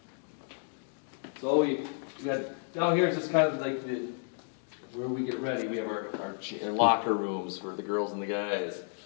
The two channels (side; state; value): right; silent; 57 dB below the other